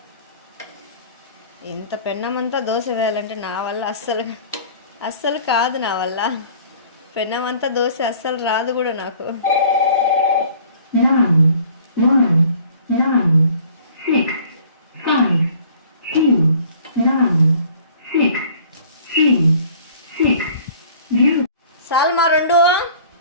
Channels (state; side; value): inverted; both; correlation -0.51